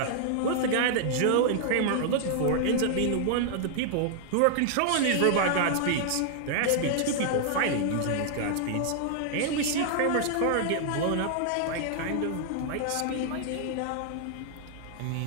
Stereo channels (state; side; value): different; both; correlation -0.01